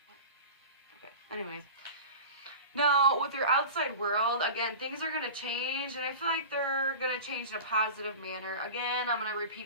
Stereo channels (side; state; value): both; inverted; correlation -0.34